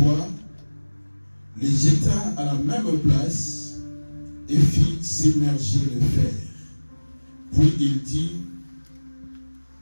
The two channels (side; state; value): both; inverted; correlation -1.00